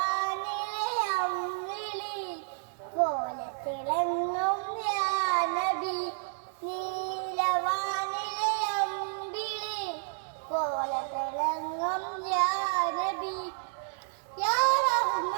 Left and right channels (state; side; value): silent; left; digital silence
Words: അമ്മിളി പോലെ തിളങ്ങും യാ നബി, നീലവാനിലെ അമ്പിളി പോലെ തിളങ്ങും യാ നബി, യാ